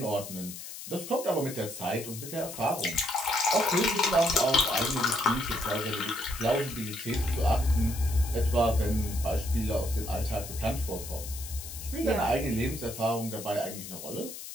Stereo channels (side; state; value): left; noise; hiss, 11 dB below the sound